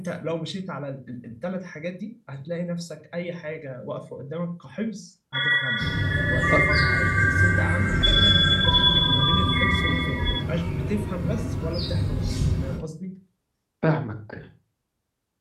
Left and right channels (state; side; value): identical; both; correlation 1.00